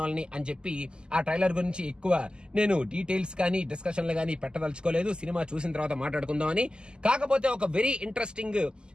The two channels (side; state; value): left; late; 0.048 ms